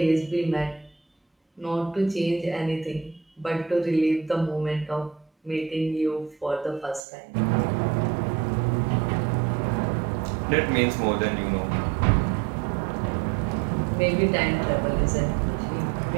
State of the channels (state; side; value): drops out; left; at 7.0 s